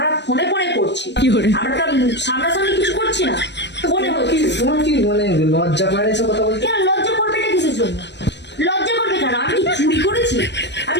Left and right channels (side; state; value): right; late; 0.51 ms